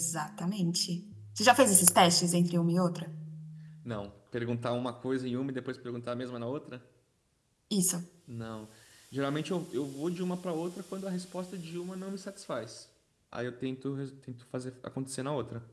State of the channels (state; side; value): identical; both; correlation 1.00